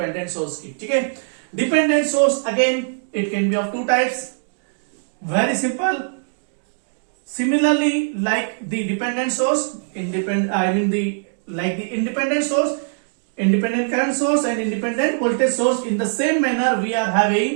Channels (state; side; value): silent; left; digital silence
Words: सोर्स की, ठीक है। Dependent source again it can be of two types, very simple. Similarly, like the dependent source, like the independent source, independent current source and independent voltage source, in the same manner we are